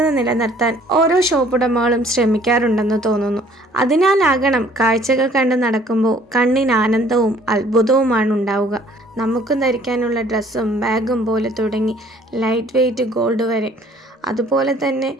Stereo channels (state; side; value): normal; both; correlation 0.57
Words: നിലനിർത്താൻ ഓരോ ഷോപ്പുടമകളും ശ്രമിക്കാറുണ്ടെന്ന് തോന്നുന്നു. അതിനാലാകണം കാഴ്ചകൾ കണ്ട് നടക്കുമ്പോൾ കണ്ണിന് ആനന്ദവും അത്ഭുതവുമാണ് ഉണ്ടാവുക. നമുക്കും ധരിക്കാനുള്ള ഡ്രസ്സും ബാഗും പോലെ തുടങ്ങി ലൈറ്റ് വെയ്റ്റ് ഗോൾഡ് വരെ. അതുപോലെ തന്നെ